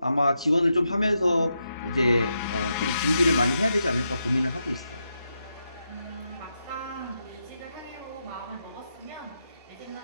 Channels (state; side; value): inverted; both; correlation -0.84